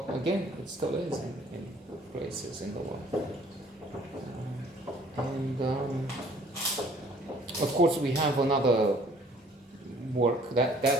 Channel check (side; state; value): both; normal; correlation 0.57